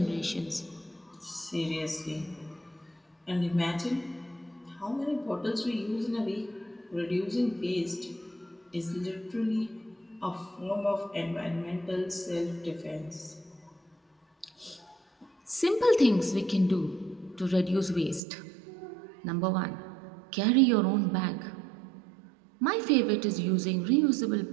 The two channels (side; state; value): left; drops out; at 18.2 s